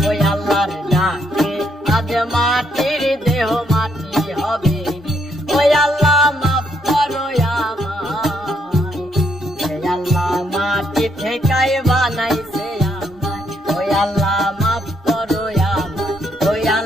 ওই আল্লাহর ডাকে আজ মাটির দেহ মাটি হবে রে। ওই আল্লাহ মাফ করো আমায়, ওই আল্লাহ মাটি থেকেই বানাইছে আমায়। ওই আল্লাহ মাফ করো আমায়, ওই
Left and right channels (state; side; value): normal; both; correlation 0.74